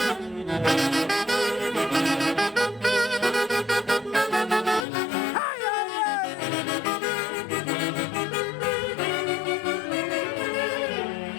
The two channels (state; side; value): drops out; right; at 4.9 s